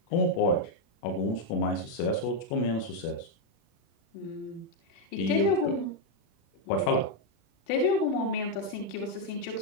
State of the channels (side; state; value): right; late; 35 ms